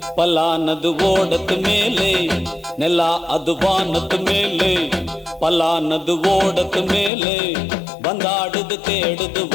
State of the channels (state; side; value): drops out; right; at 7.1 s